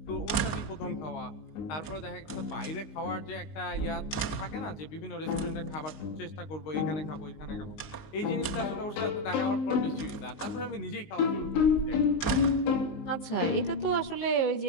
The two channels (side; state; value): right; late; 19 ms